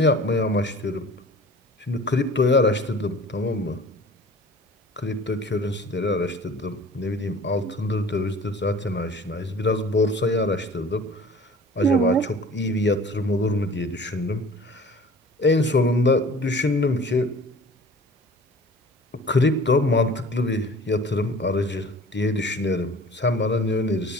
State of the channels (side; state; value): both; normal; correlation 0.45